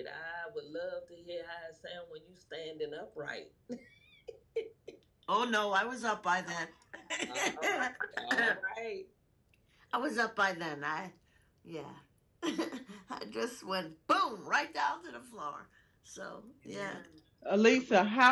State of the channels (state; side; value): identical; both; correlation 1.00